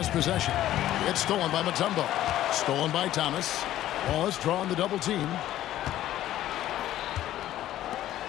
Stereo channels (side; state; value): right; quieter; 13.3 dB